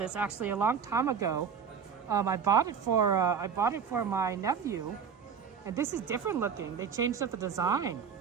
actually a long time ago. I bought it for my nephew, and this is different looking. They changed up the design.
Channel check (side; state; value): left; quieter; 7.1 dB